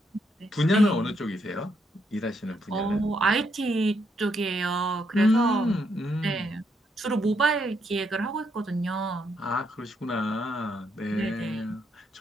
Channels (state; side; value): normal; both; correlation 0.76